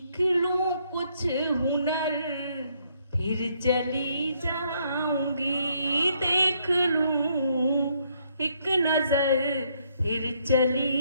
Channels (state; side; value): inverted; both; correlation -0.71